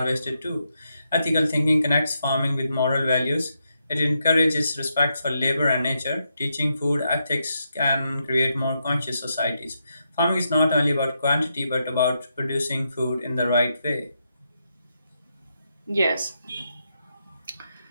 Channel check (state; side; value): inverted; both; correlation -0.82